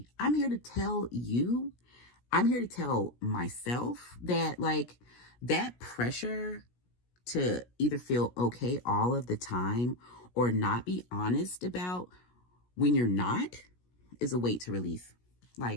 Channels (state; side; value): late; right; 17 ms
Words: I'm here to tell myself that like that pressure to either feel okay all of the time or not be honest about when you're not is a weight to release.